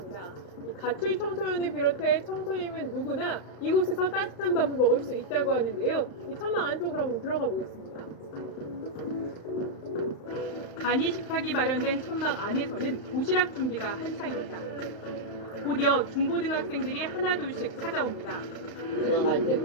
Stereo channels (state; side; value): late; right; 35 ms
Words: 이 가출 청소년을 비롯해 청소년은 누구나 이곳에서 따뜻한 밥을 먹을 수 있다고 하는데요. 이 천막 안쪽으로 한번 들어가 보겠습니다. 간이 식탁이 마련된 천막 안에서는 도시락 준비가 한창입니다. 곧이어 중고등학생들이 하나둘씩 찾아옵니다. 지나갈 때